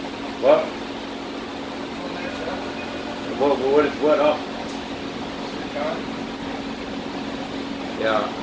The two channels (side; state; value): both; identical; correlation 1.00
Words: What? What up? Yeah.